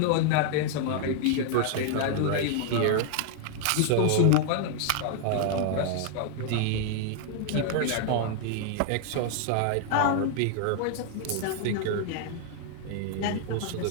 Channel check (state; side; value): different; both; correlation 0.00